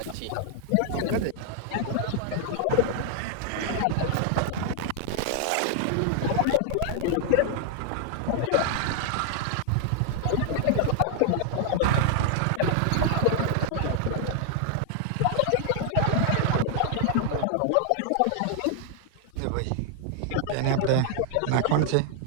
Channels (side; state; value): both; different; correlation 0.00